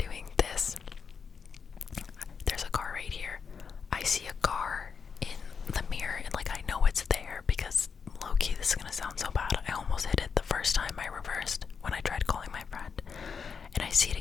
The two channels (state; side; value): quieter; right; 6.0 dB